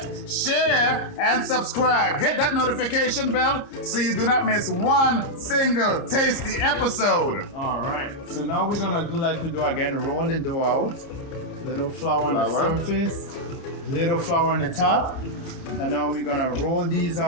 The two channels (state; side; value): late; right; 30 ms